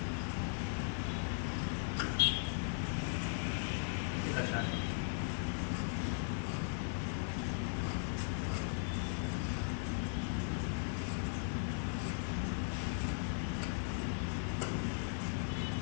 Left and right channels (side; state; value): right; silent; 52 dB below the other